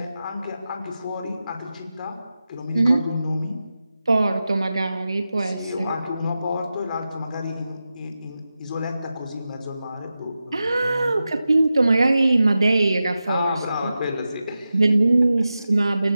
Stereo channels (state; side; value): inverted; both; correlation -0.92